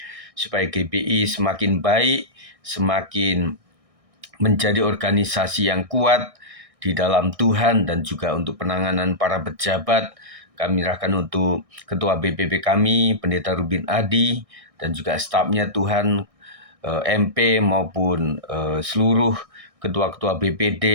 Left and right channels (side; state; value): left; late; 1.6 ms